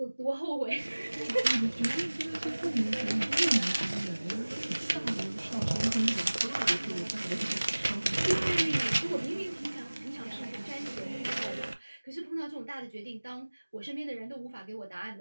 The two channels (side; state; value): both; inverted; correlation -1.00